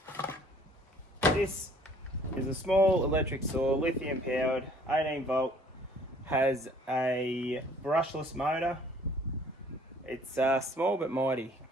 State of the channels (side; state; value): both; normal; correlation 0.57